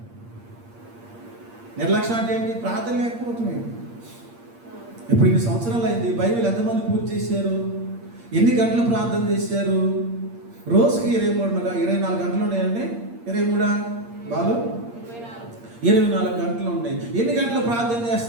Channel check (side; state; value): left; late; 8.6 ms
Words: నిర్లక్ష్యం అంటే ఏంటి? ప్రార్థన లేకపోతుంది. ఇప్పుడు ఇన్ని సంవత్సరాలు అయింది, బైబిల్ ఎంతమంది పూర్తి చేశారు? ఎన్ని గంటలు ప్రార్థన చేశారు? రోజుకి 24 గంటలు ఉన్నాయండి. 23 బాలు 24 గంటలు ఉన్నాయి. ఎన్ని గంటలు ప్రార్థన